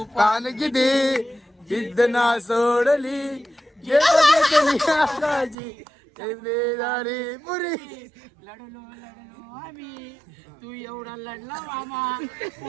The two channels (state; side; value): drops out; left; at 5.6 s